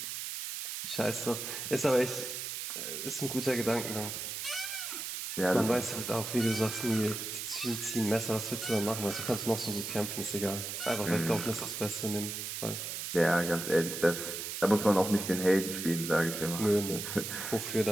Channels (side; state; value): right; noise; hiss, 5 dB below the sound